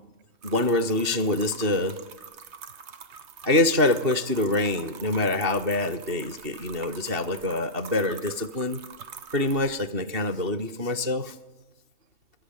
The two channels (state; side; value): late; left; 2.7 ms